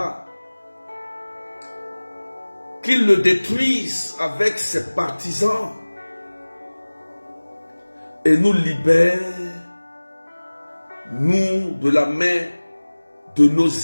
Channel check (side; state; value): both; inverted; correlation -1.00